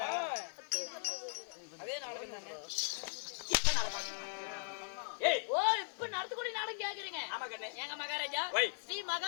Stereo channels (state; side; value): silent; right; digital silence